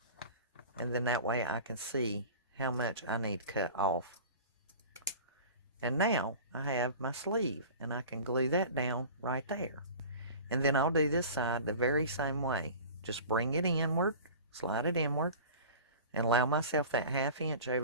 and then that way I can see how much I need cut off. And now I have my sleeve, and I can glue that down right there. And then I'll do this side the very same way. Just bring it inward, slide it inward, and allow myself that 1/2 inch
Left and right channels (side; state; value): both; inverted; correlation -0.39